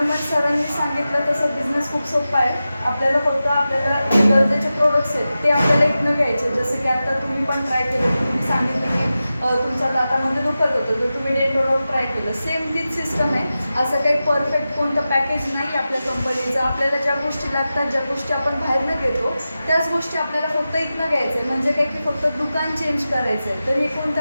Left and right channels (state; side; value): inverted; both; correlation -0.93